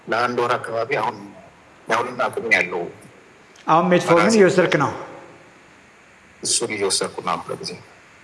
ለ1 ወር አካባቢ። አሁን ዳውሊን አቁም ያለው። አሁን ሜትፎርሚን እየወሰድክ ነው? እሱን እየወሰድኩ ነው ለጊዜ።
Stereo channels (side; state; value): both; identical; correlation 1.00